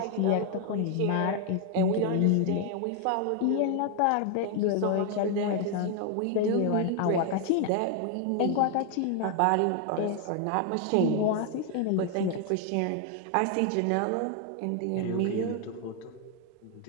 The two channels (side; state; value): both; different; correlation 0.01